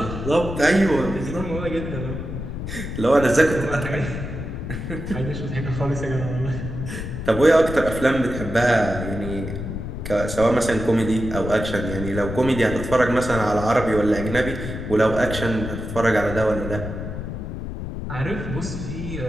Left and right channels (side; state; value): left; noise; rumble, 6 dB below the sound